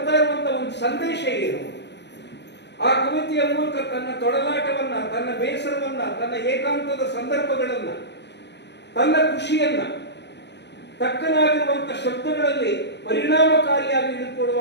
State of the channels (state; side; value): late; right; 0.50 ms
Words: ಇರುವಂತ ಒಂದು ಸಂದೇಶ ಏನು? ಆ ಕವಿತೆಯ ಮೂಲಕ ತನ್ನ ತೊಡಲಾಟವನ್ನ, ತನ್ನ ಬೇಸರವನ್ನ, ತನ್ನ ಏಕಾಂತದ ಸಂದರ್ಭಗಳನ್ನ, ತನ್ನ ಖುಷಿಯನ್ನ ತಕ್ಕನಾಗಿರುವಂತ ಶಬ್ದಗಳಲ್ಲಿ ಪರಿಣಾಮಕಾರಿಯಾಗಿ